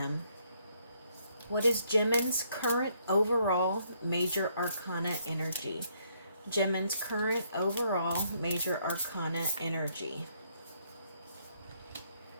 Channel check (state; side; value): inverted; both; correlation -0.70